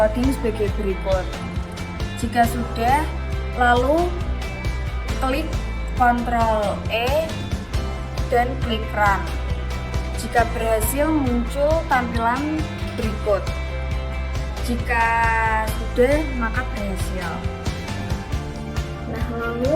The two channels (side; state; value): both; identical; correlation 1.00